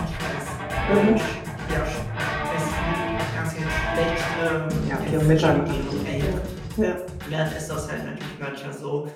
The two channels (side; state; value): both; identical; correlation 1.00